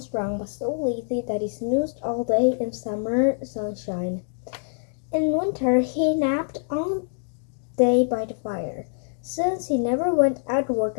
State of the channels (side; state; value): right; silent; digital silence